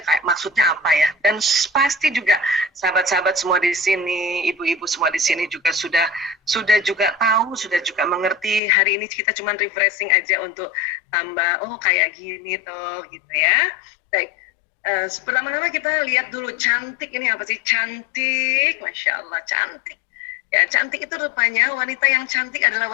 kayak maksudnya apa ya. Dan pasti juga sahabat-sahabat semua di sini, ibu-ibu semua di sini juga sudah juga tahu, sudah juga mengerti. Hari ini kita cuma refreshing aja untuk tambah, oh kayak gini toh gitu ya. Baik. Pertama-tama kita lihat dulu cantik ini apa sih? Cantik, Masya Allah, cantik. Ya, cantik itu rupanya wanita yang cantik adalah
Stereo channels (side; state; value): right; drops out; at 8.6 s